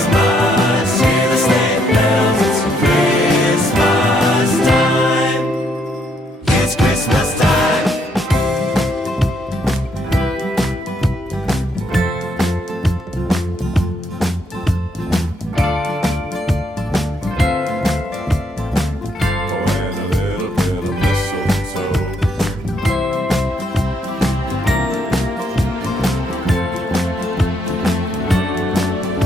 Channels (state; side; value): normal; both; correlation 0.73